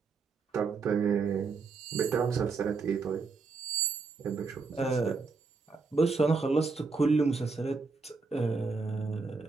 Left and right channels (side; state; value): left; quieter; 4.5 dB